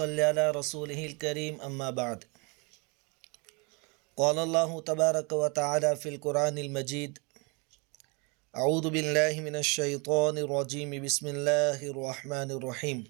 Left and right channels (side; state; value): left; quieter; 30.7 dB